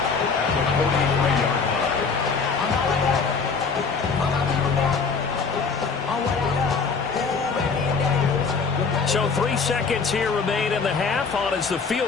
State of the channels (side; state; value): right; quieter; 5.1 dB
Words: at the 43-yard line. So 3 seconds here remain in the half. On is the